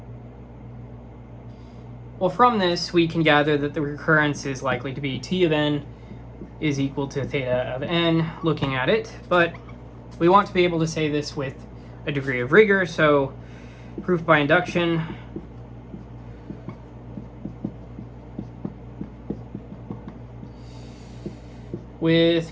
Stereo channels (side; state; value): both; identical; correlation 1.00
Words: Well, from this, we can gather that the recurrence is likely to be T of n is equal to theta of n, looking at it, but we want to be able to say this with a degree of rigor, so proof by induction. With